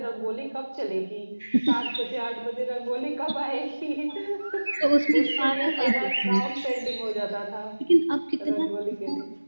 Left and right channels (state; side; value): inverted; both; correlation -1.00